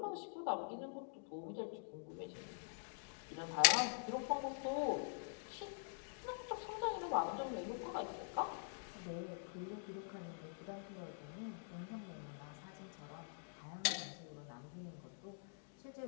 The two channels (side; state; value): right; silent; digital silence